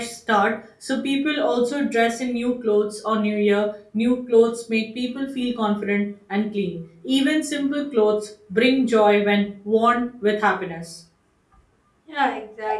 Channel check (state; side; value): identical; both; correlation 1.00